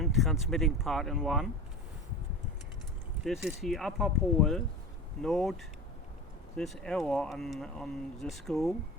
transmitting part in one. This is the upper pole. Note this arrow on the screw.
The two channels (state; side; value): normal; both; correlation 0.31